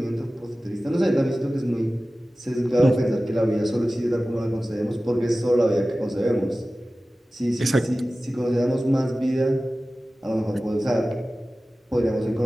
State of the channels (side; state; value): both; normal; correlation 0.96